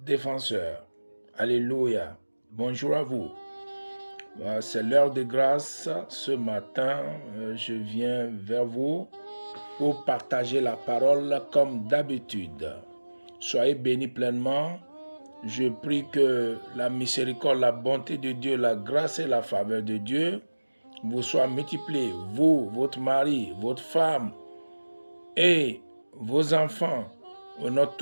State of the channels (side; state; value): both; inverted; correlation -1.00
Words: défenseur. Alléluia. Bonjour à vous. C'est l'heure de grâce. Ce matin, je viens vers vous pour partager la parole comme d'habitude. Soyez bénis pleinement. Je prie que la miséricorde, la bonté de Dieu, la grâce et la faveur de Dieu vous soient multipliées, vous, votre mari, votre femme et vos enfants, au nom